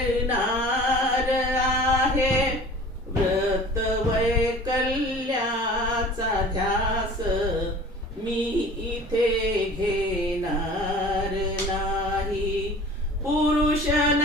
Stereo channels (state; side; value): normal; both; correlation 0.43